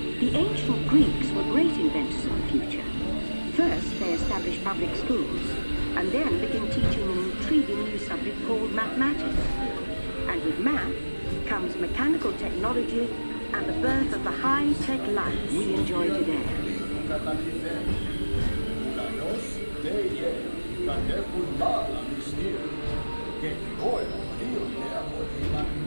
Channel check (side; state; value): both; inverted; correlation -1.00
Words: The ancient Greeks were great inventors of the future. First, they established public schools, and then began teaching an intriguing new subject called mathematics. And with math comes mechanical technology and the birth of the high-tech life we enjoy today.